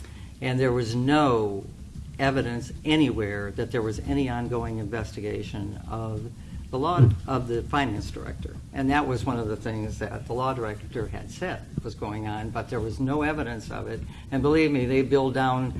And there was no evidence anywhere that there was any ongoing investigation of the law of the finance director. And that was one of the things that the law director had said was going on, but there was no evidence of it. And believe me, they billed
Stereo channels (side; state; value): both; identical; correlation 1.00